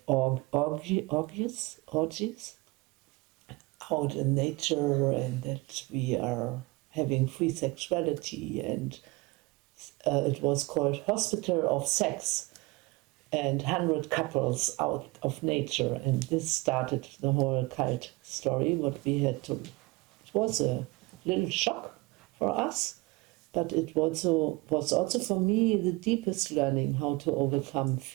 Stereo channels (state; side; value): quieter; left; 24.0 dB